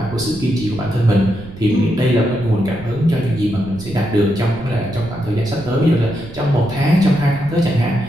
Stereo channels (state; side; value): noise; right; rumble, 15 dB below the sound